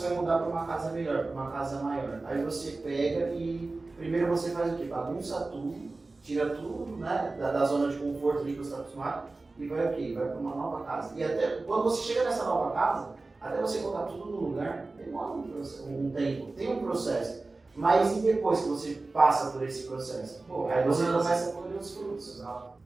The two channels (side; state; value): left; quieter; 3.4 dB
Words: vai mudar para uma casa melhor, para uma casa maior. Aí você pega e primeiro você faz o quê? Bagunça tudo, tira tudo, né, da zona de conforto ali que você está acostumado e vai o quê? Vai para uma nova casa. E até quando você chega nessa nova casa, até você colocar tudo no lugar, demora um tempo, tem um processo. Mas e depois que você passa por esse processo? Aí você começa a colher os frutos.